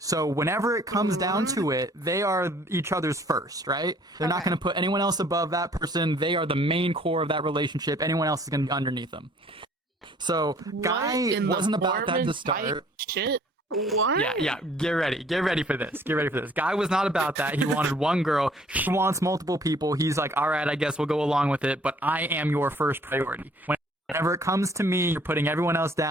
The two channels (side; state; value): both; normal; correlation 0.57